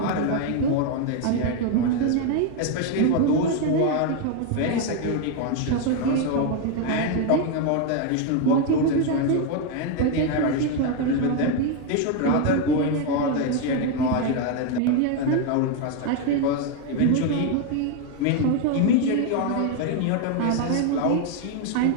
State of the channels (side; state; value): both; different; correlation 0.01